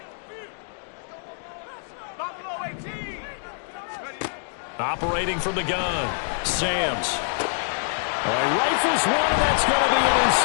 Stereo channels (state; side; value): silent; right; digital silence